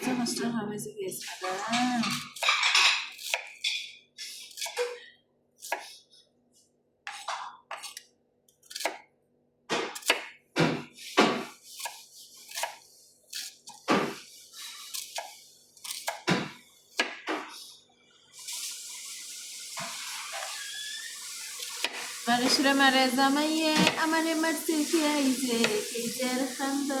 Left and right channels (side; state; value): both; identical; correlation 1.00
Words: কষ্ট হবে যে গেছে মানুষরা মারে জামাইয়ে আমারে মারতে খেয়েছে, কেজের